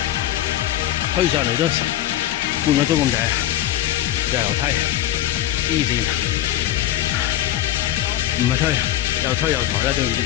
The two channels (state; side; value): quieter; right; 13.2 dB